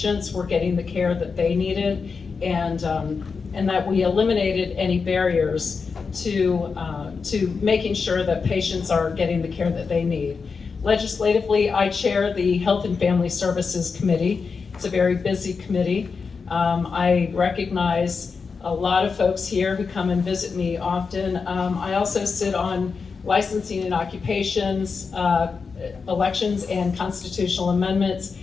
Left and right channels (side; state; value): right; quieter; 5.1 dB